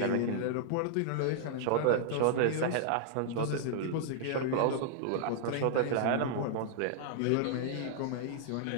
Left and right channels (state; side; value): different; both; correlation -0.01